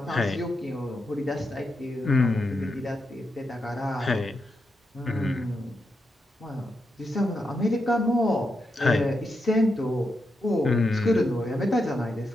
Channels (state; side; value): normal; both; correlation 0.85